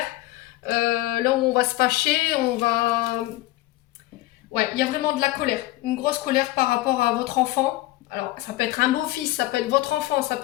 Là où on va se fâcher, on va... Ouais, il y a vraiment de la colère, une grosse colère par rapport à votre enfant. Alors ça peut être un beau-fils, ça peut être votre enfant, ça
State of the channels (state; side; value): quieter; right; 17.4 dB